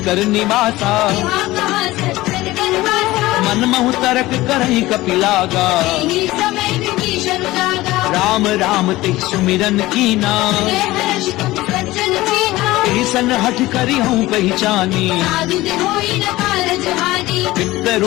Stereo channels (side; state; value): right; quieter; 18.1 dB